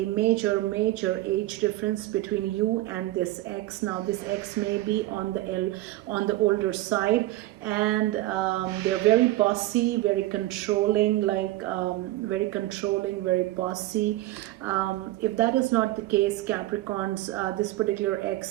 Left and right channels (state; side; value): quieter; left; 17.0 dB